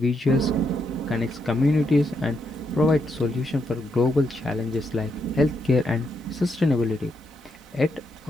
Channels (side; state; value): both; normal; correlation 0.79